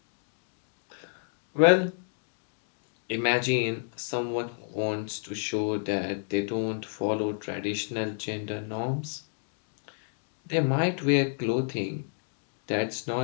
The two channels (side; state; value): right; silent; digital silence